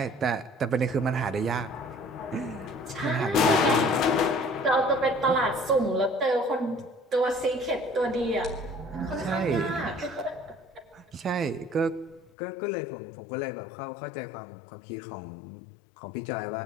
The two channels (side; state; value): right; drops out; at 12.3 s